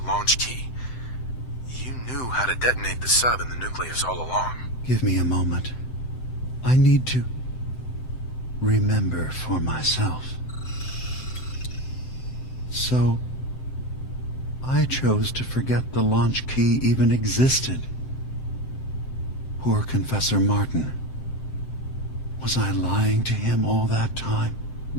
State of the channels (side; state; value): right; late; 7.8 ms